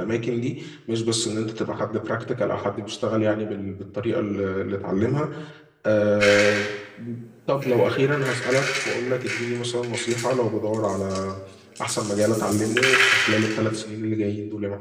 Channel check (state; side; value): identical; both; correlation 1.00